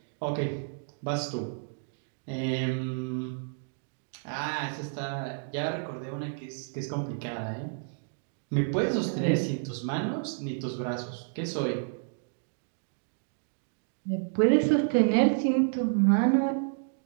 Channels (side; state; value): left; silent; digital silence